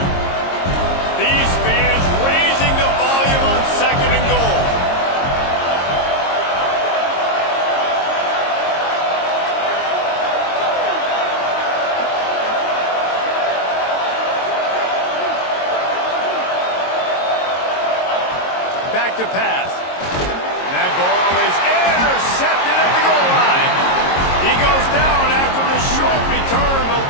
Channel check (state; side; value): late; right; 22 ms